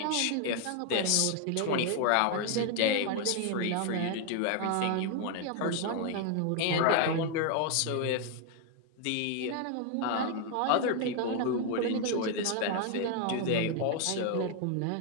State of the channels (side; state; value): both; different; correlation 0.00